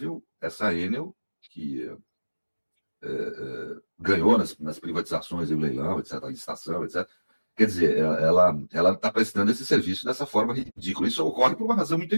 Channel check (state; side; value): inverted; both; correlation -1.00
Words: essa Enel, que ganhou nas privatizações, o leilão, etc., a licitação, etc. Quer dizer, ela está prestando esse serviço dessa forma ridícula. Isso ocorre por uma razão muito